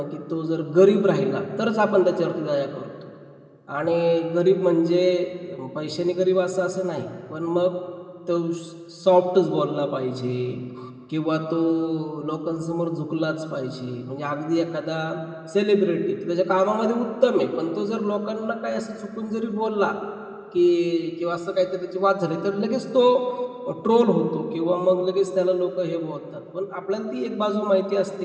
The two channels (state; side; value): identical; both; correlation 1.00